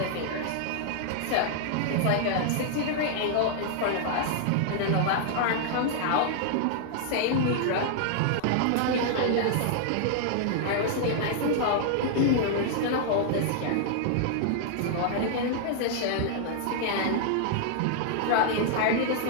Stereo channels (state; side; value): different; both; correlation -0.01